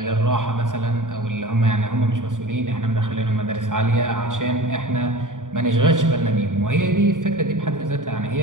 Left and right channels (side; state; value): left; late; 0.88 ms